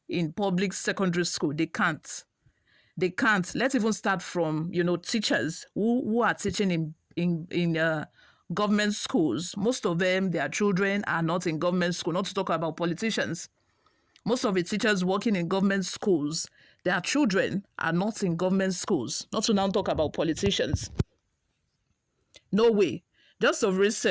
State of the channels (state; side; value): identical; both; correlation 1.00